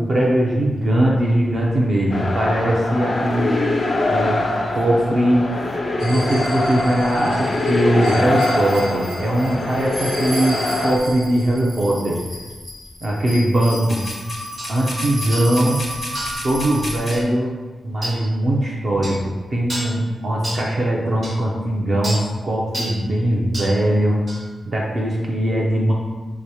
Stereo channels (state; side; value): normal; both; correlation 0.90